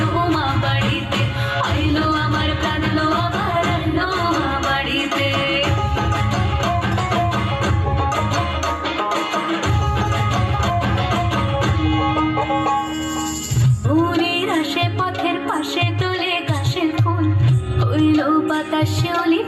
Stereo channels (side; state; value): both; identical; correlation 1.00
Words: উমা বাড়িতে, আইলো আমার প্রাণ লো আবার আইলো উমা বাড়িতে। ফুলের আসে পথের পাশে তোলে গাছের ফুল, হইল বাতাস শিউলি